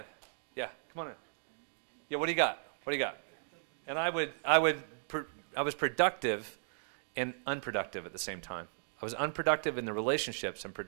Yeah, come on in. Yeah, what do you got? What do you got? And I was productive and unproductive at the same time. I was unproductive in the relationships and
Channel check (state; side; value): silent; left; digital silence